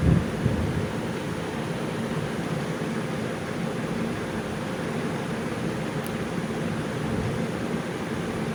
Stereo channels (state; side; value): identical; both; correlation 1.00